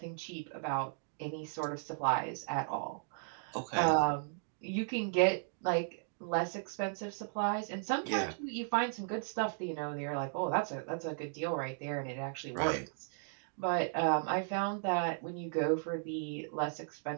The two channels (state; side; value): silent; left; digital silence